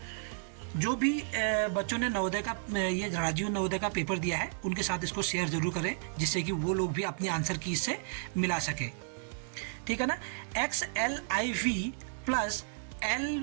जो भी बच्चों ने नवोदय का ये राजीव नवोदय का पेपर दिया है उनके साथ इसको शेयर ज़रूर करें, जिससे कि वो लोग भी अपनी आंसर की इससे मिला सकें। ठीक है ना। XLIV प्लस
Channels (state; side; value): silent; left; digital silence